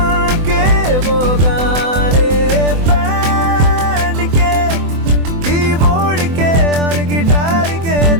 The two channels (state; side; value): late; left; 24 ms